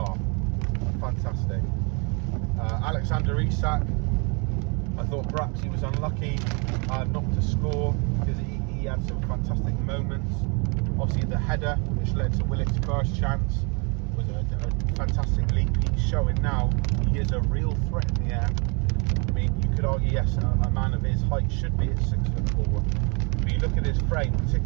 fantastic. Alexander Isak, I thought perhaps he was unlucky not to score, because he had some fantastic moments. Obviously the header, which led to Willock's first chance, was a fantastic leap. He's showing now he is a real threat in the air. I mean, you could argue, yes, a man of his height should be at 6'4", but you look at his frame,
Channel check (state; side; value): quieter; left; 33.2 dB